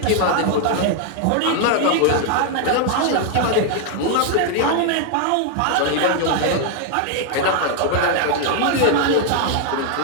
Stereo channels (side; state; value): both; different; correlation 0.00